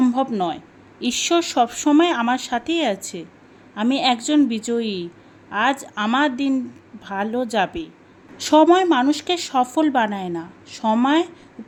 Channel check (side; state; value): both; identical; correlation 1.00